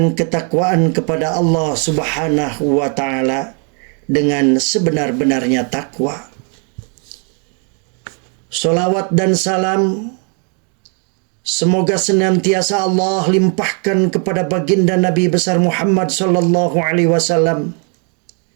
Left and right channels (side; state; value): left; quieter; 38.9 dB